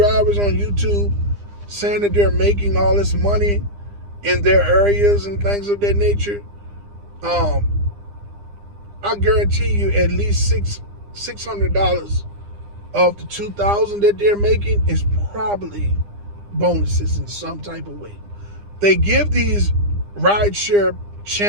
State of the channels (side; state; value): left; late; 9.9 ms